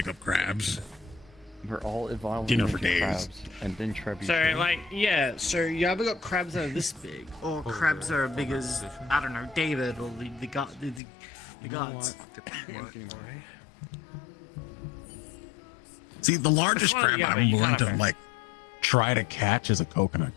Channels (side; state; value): right; drops out; at 11.0 s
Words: up crabs. We're all evolving You know, for into days. crabs, and then trebuchet. So, like, yeah, so you ever got crabs that are this big? Or crabs that are big as, I don't know, David or the gods. See, the largest Well, crab yeah, but I'm you willing to gotta- like try to catch is a coconut